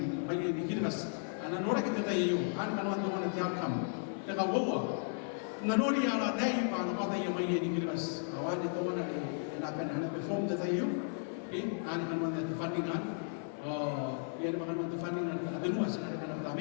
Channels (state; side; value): silent; right; 55 dB below the other